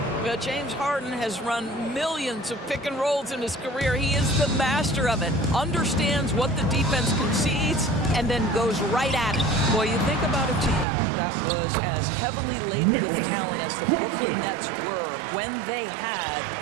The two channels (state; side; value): drops out; left; at 10.9 s